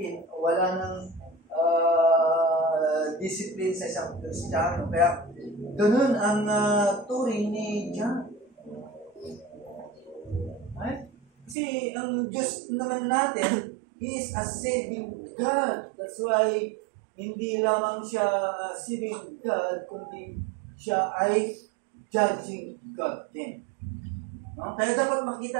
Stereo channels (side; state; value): left; drops out; at 11.6 s